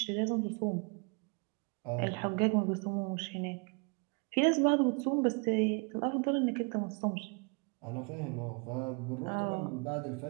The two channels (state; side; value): quieter; left; 33.9 dB